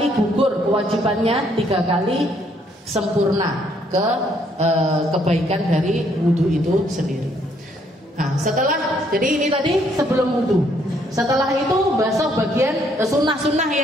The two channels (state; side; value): normal; both; correlation 0.68